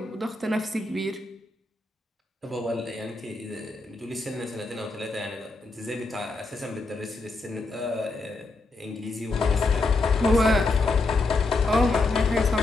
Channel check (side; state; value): right; quieter; 3.4 dB